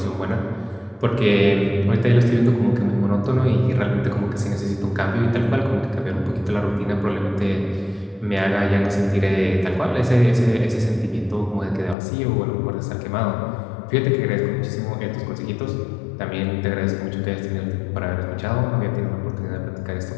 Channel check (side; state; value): right; drops out; at 12.0 s